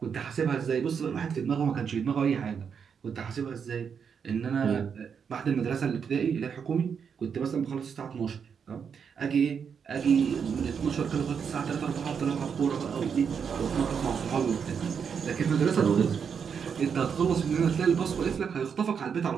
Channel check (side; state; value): left; quieter; 6.8 dB